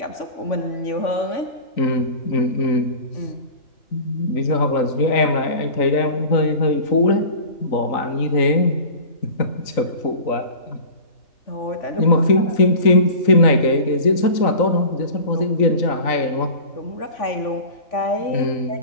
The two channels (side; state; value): right; late; 3.9 ms